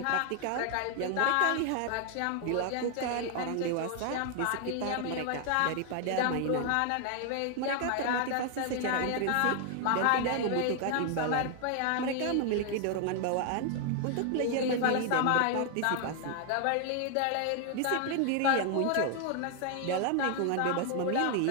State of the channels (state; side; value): different; both; correlation 0.00